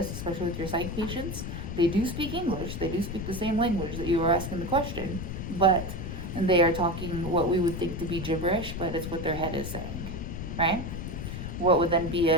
especially with your psych patients. They do speak English. They do speak the same language that you were asking the question, but they are talking what we would think to be gibberish, but it's what their head is saying, right? What would then be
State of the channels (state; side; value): noise; left; rumble, 6 dB below the sound